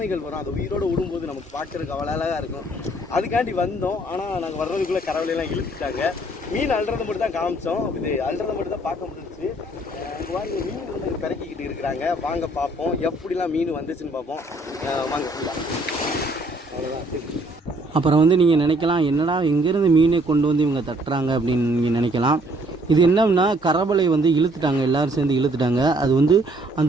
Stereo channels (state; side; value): normal; both; correlation 0.63